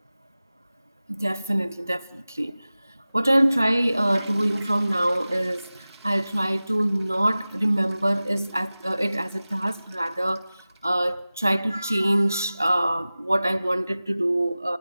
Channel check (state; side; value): inverted; both; correlation -0.97